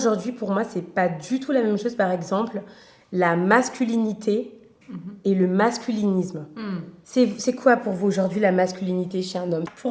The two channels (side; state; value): both; identical; correlation 1.00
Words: c'est pas du tout la même chose, par exemple, la masculinité et le masculinisme. C'est quoi pour vous aujourd'hui la masculinité chez un homme ?